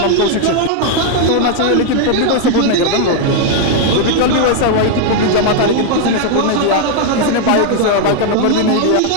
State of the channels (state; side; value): different; both; correlation 0.00